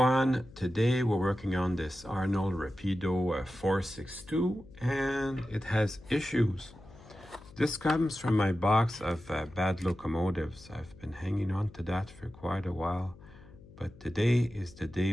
today we're working on this Arnold Rapido 462 and it has issues. This comes from my box of bad locomotives. I've been hanging on to that for quite a while, but today is the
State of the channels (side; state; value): left; noise; hum, 21 dB below the sound